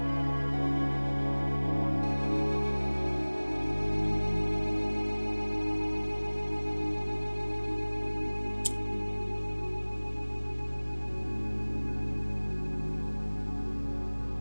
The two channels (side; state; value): both; inverted; correlation -1.00